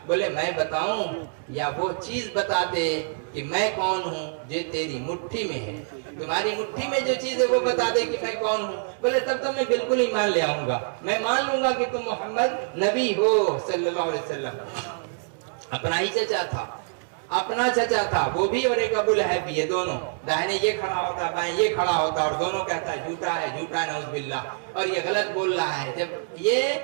बोले मैं बताऊं या वो चीज बता दे कि मैं कौन हूँ जो तेरी मुट्ठी में है। तुम्हारी मुट्ठी में जो चीज है वो बता दे कि मैं कौन हूँ। बोले तब तो मैं बिल्कुल ईमान ले आऊंगा, मैं मान लूंगा कि तुम मोहम्मद नबी हो सल्लल्लाहु अलैहि वसल्लम। अपना ही चचा था, अपना चचा था वो भी, और एक अबू लहब भी, ये दोनों दाहिने ये खड़ा होता, बाएं ये खड़ा होता, और दोनों कहता है झूठा है, झूठा है, नऊज़ुबिल्लाह, और ये गलत बोल रहा है। जब ये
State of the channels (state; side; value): silent; left; digital silence